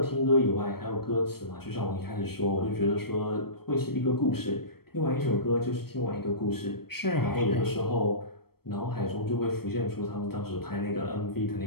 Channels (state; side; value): late; right; 0.95 ms